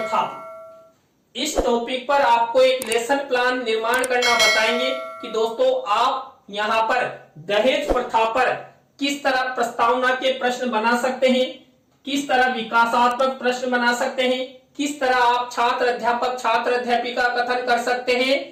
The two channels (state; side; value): identical; both; correlation 1.00